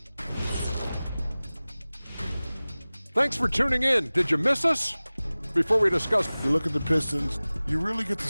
Thanks for tuning in. Did you miss us? Before we discuss, You look at the Pistons, you really get to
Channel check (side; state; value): both; inverted; correlation -0.98